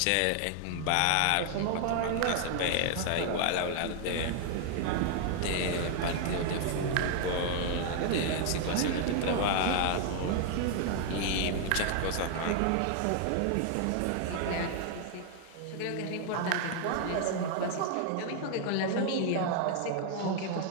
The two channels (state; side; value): different; both; correlation 0.00